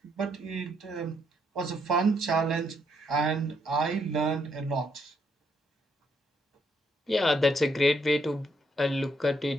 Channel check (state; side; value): normal; both; correlation 0.74